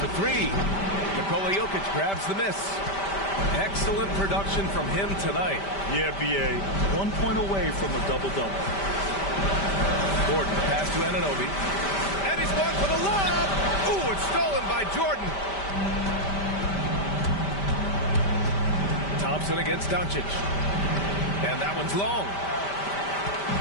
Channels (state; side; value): late; right; 5.1 ms